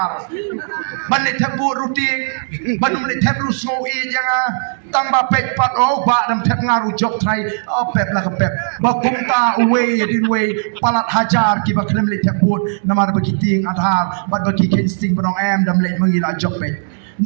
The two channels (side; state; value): left; silent; digital silence